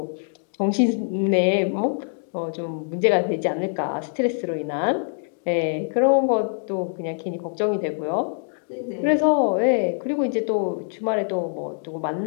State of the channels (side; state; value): right; silent; digital silence